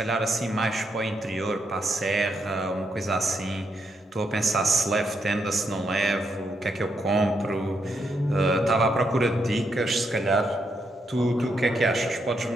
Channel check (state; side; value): normal; both; correlation 0.80